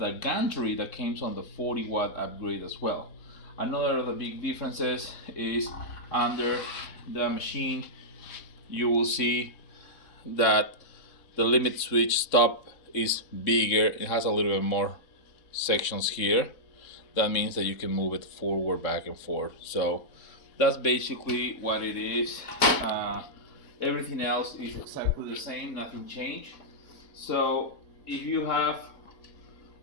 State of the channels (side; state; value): right; late; 3.6 ms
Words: gantry that comes on the 40-watt upgrade as well. Another of the big differences is under the machine you will see that the limit switch stop is bigger. It has a little bit more sections here. That means that you can move it forward, back and forth. So that's basically what it is. Everything else is exactly the same, nothing changed. So if you have